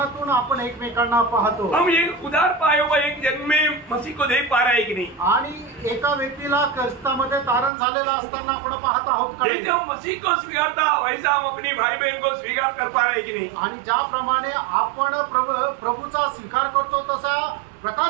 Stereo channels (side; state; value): left; drops out; at 7.7 s